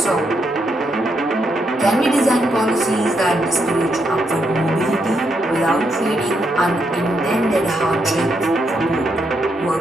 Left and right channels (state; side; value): normal; both; correlation 0.79